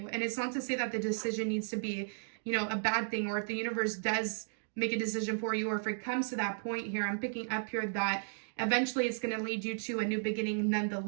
And it's not to say that the decision needs to be, a bad thing, or if the universe does make a decision for you, or if it comes to that point here, I'm picking up here that eventually it's going to lead you to a new beginning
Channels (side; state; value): left; silent; digital silence